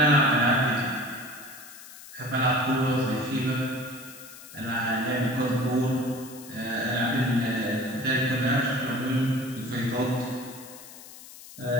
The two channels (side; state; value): left; noise; hiss, 17 dB below the sound